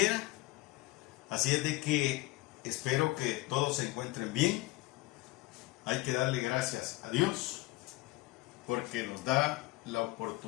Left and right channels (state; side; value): quieter; right; 20.4 dB